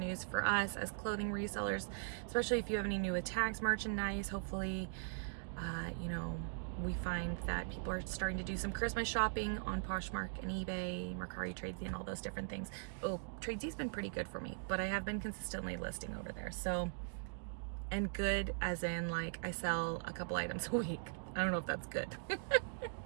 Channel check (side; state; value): left; silent; digital silence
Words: for us as clothing resellers, especially if you have any new tags merchandise. Hopefully, you know, we find that people are starting to do some Christmas shopping on Poshmark and eBay, Mercari, Tradesy, and all those different things. Oh, Tradesy's been pretty good for me, but I have been consistently listing over there. So, and good as in like I sell a couple items a week. I don't know if that's good.